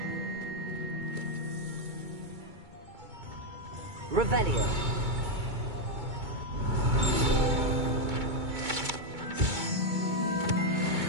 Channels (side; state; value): left; late; 2.2 ms